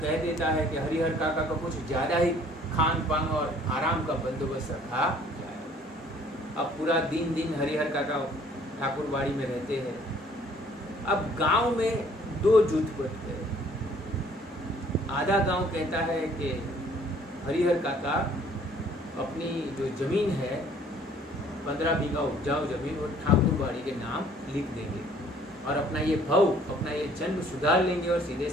देता है कि हरिहर काका का कुछ ज्यादा ही खान पान और आराम का बंदोबस्त रखा जाए। अब पूरा दिन हरिहर काका ठाकुरबाड़ी में रहते हैं। अब गांव में 2 जुट बनते हैं। आधा गांव कहता है कि हरिहर काका अपनी जो जमीन है 15 बीघा उपजाऊ जमीन वो ठाकुरबाड़ी के नाम लिख देंगे और अपना ये भाव, अपना ये जन्म सुधार लेंगे और सीधे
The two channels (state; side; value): normal; both; correlation 0.57